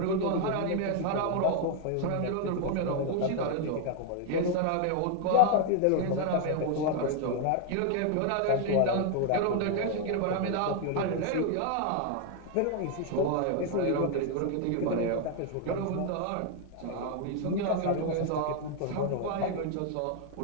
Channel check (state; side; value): different; both; correlation 0.00